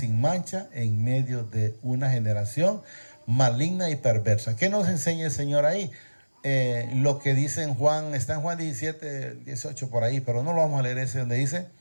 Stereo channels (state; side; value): inverted; both; correlation -1.00